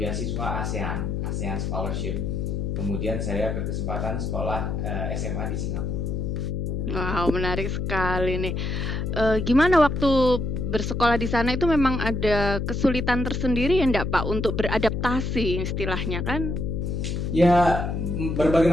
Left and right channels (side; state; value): left; noise; hum, 2 dB below the sound